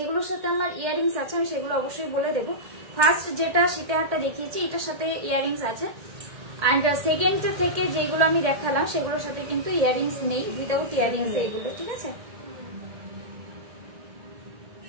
সাথে আমার ইয়ারিংস আছে আমি সেগুলো অবশ্যই বলে দেবো। ফার্স্ট যেটা শীতের হারটা দেখিয়েছি এটার সাথে ইয়ারিংস আছে, অ্যান্ড সেকেন্ড থেকে যেগুলো আমি দেখালাম সেগুলোর সাথে কিন্তু ইয়ারিংস নেই, উইদাউট ইয়ারিংস এইগুলো, ঠিক আছে।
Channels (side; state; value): left; late; 1.8 ms